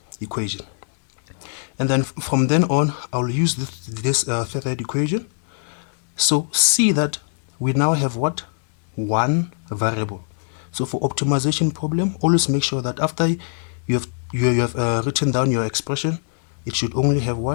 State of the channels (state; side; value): silent; right; digital silence